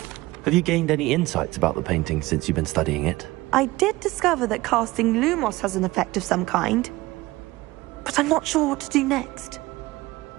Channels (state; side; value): quieter; left; 19.6 dB